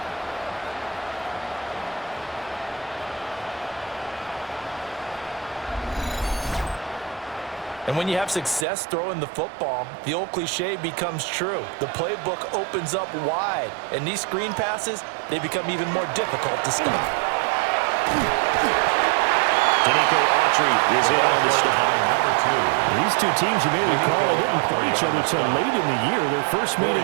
And when you have success throwing the football, the old cliche becomes true. The playbook opens up wide, and these screen passes, they become even more difficult to stop. Danico Autry is in on the stop. These two teams, you may recall, didn't play each other until late in the year. Their first meeting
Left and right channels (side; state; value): left; drops out; at 8.7 s